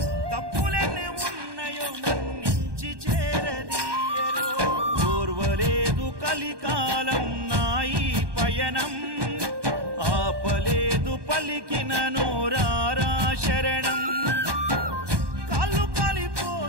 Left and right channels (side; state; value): left; late; 1.2 ms